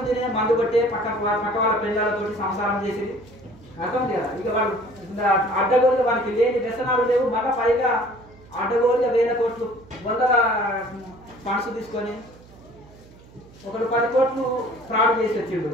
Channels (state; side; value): noise; right; hum, 23 dB below the sound